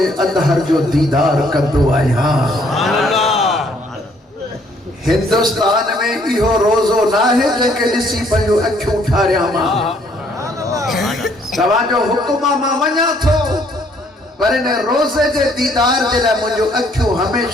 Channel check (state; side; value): normal; both; correlation 0.65